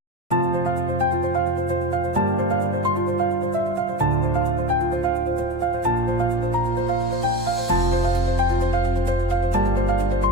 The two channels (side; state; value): both; normal; correlation 0.27